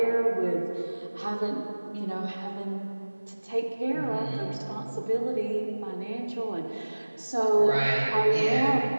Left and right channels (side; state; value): both; inverted; correlation -1.00